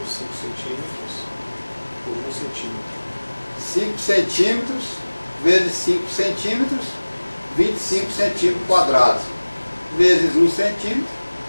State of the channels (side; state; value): both; inverted; correlation -1.00